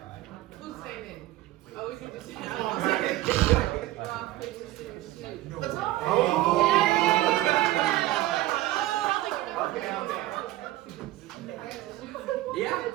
Who's saying it? Oh, we can just say it. Rock, paper, scissors, shoot. Oh. Okay. Yeah.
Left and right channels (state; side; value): quieter; left; 16.2 dB